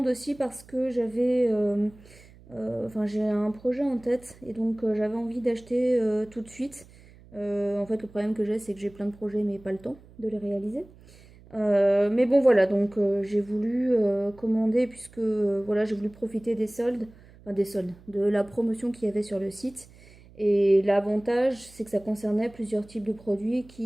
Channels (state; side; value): noise; right; hum, 24 dB below the sound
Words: aussi parce que enfin j'ai un projet en tête et donc j'avais envie d'acheter tout de suite. En fait, le problème que j'ai, c'est que j'ai plein de projets mais pas le temps de les réaliser. Mais bon voilà, donc j'ai voulu commander puisque voilà, j'ai voulu profiter des soldes, enfin des soldes, de la promotion qu'il y avait sur le site. Et l'avantage, c'est que ça concernait plusieurs types de produits